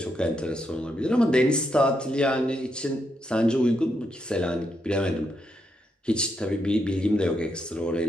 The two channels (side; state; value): both; normal; correlation 0.80